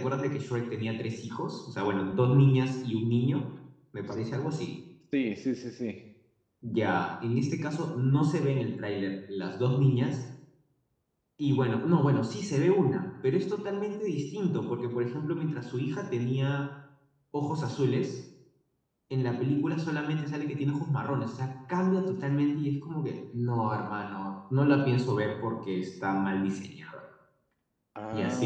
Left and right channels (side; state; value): both; identical; correlation 1.00